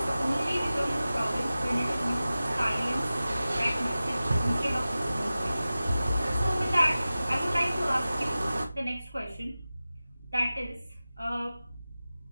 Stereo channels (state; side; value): inverted; both; correlation -0.96